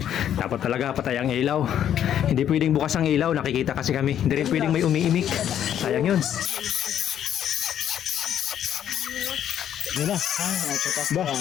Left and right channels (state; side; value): quieter; right; 10.1 dB